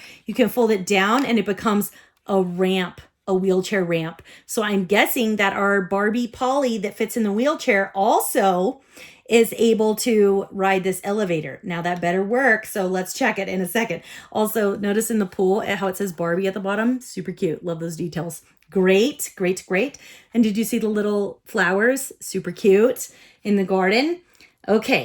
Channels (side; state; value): both; identical; correlation 1.00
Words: you can fold it down and it becomes a ramp, a wheelchair ramp. So I'm guessing that our Barbie Polly that fits in the wheelchair also is able to ride this elevator. Now that better work. So let's check it in a second. Also, notice in the pool how it says Barbie at the bottom. Super cute. Love those details. Great, great, great. And did you see the little flowers? Super cute in the garden.